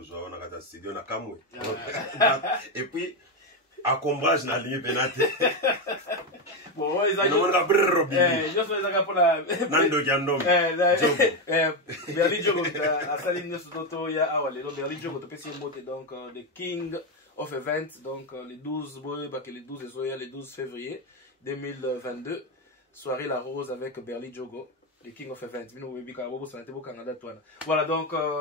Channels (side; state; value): both; normal; correlation 0.09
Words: zo na kata studio na kamwe. Et puis à combrage na ligne penate. Bon, ils ont on a brrr robi. Je fais ça pour la Nando Jandom. Berli Jogo à Saline Soto ya awale. Donc Berli Jogo to pesi mote donc the King of Events donc les 12 les 12 février 2022. Soirée La Rose avec Berli Jogo, le King of Events. Voilà donc,